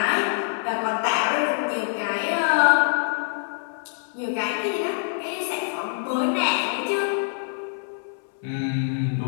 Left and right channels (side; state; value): right; silent; 62 dB below the other